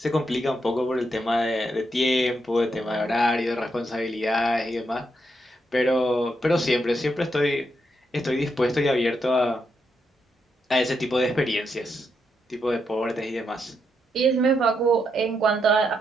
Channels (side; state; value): both; normal; correlation 0.81